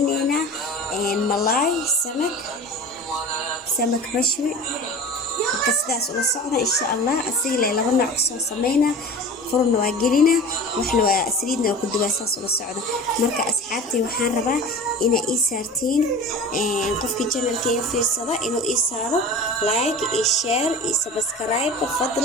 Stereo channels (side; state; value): both; normal; correlation 0.36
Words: ملاي سمك مشوي كسداس ولا صعنا إن شاء الله أسيلة لغنا عكسو سمينا فرن واجرينا وإحنا سريدنا وكل باساس ولا صعنا مركا أصحابتي وحان ربا إنا إيسارتين قفكي جنال كي في الصدا إنو إيسارو لايك إيشير إيسابسكرايب